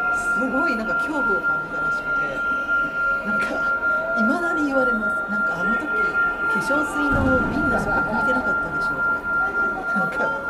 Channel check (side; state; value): both; identical; correlation 1.00